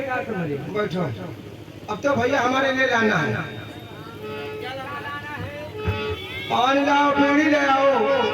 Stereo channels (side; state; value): both; identical; correlation 1.00